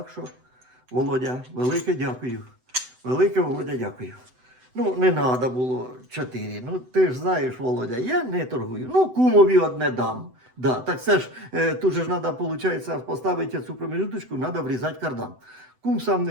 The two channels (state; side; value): late; left; 7.9 ms